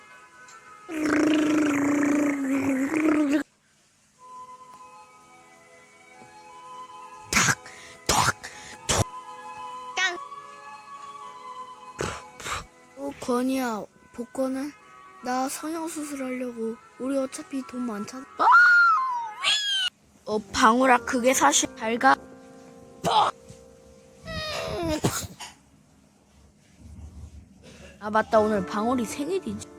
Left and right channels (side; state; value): both; identical; correlation 1.00